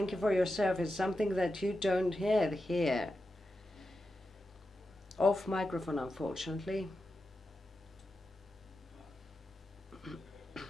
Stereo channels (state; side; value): normal; both; correlation 0.90